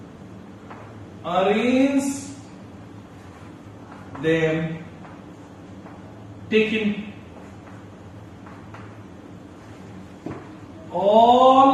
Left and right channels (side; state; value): both; identical; correlation 1.00